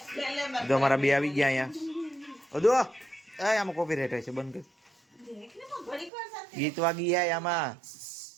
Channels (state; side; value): drops out; left; at 6.1 s